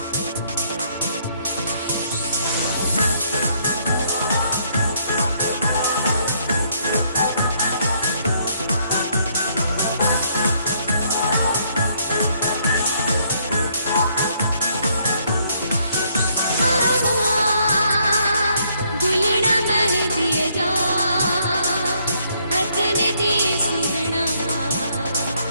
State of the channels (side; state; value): both; inverted; correlation -0.69